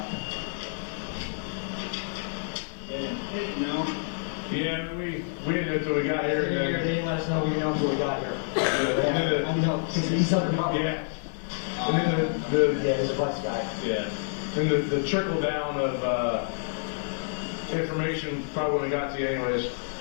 No. Yeah, we didn't know until we got here. And They then, didn't let us know we know until we got here. and then I know, because he's talking about. yeah. And then the Yeah, he's a flex guy. yeah. And the trickle down of information probably wouldn't have got to you anyways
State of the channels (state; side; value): silent; right; digital silence